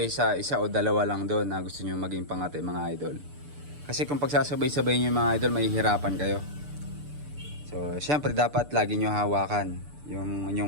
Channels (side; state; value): left; late; 6.8 ms